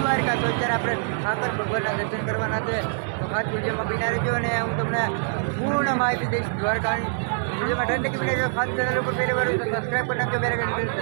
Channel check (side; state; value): left; silent; digital silence